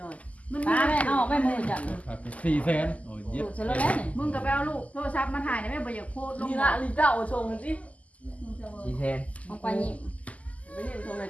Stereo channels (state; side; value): late; right; 0.071 ms